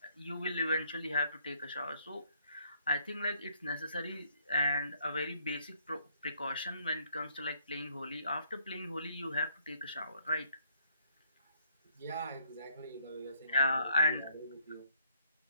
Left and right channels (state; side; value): inverted; both; correlation -0.67